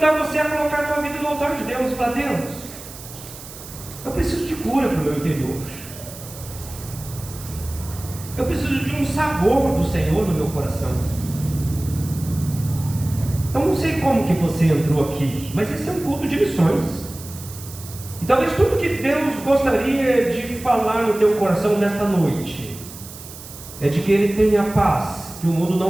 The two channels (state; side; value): noise; right; hiss, 15 dB below the sound